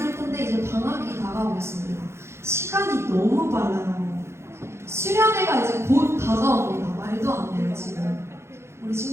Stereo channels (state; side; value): late; left; 0.13 ms